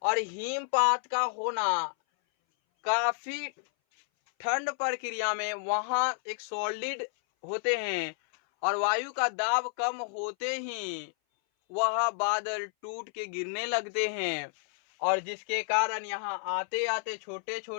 और हिमपात का होना काफी ठंड प्रक्रिया में, वहां एक सॉलिड होते हैं और वायु का दाब कम होते ही वह बादल टूट के गिरने लगते हैं, और जिसके कारण यहाँ आते आते छोटे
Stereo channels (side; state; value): right; silent; 58 dB below the other